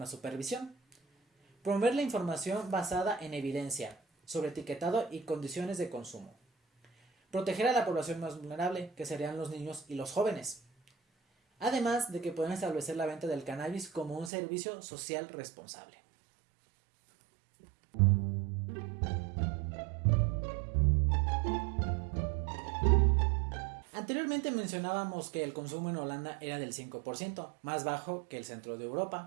supervisión, promover la información basada en evidencia sobre etiquetado y condiciones de consumo, proteger a la población más vulnerable, que serían los niños y los jóvenes, además de que pueden establecer la venta del cannabis como un servicio social responsable. Anteriormente mencionábamos que el consumo en Holanda era del 5%, más bajo que el centro de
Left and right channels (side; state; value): left; drops out; at 14.3 s